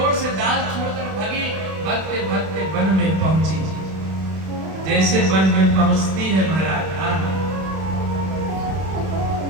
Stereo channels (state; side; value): late; left; 31 ms